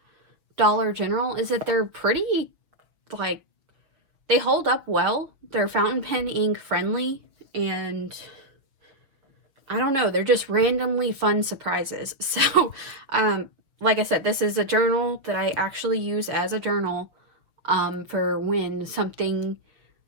Dollar General is that they're pretty, like, they hold up well. They're fountain pen ink friendly, and I don't know, they're just randomly fun surprises. So, like I said, this is a journal that I actually use as a journal for when something,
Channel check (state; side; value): late; left; 6.0 ms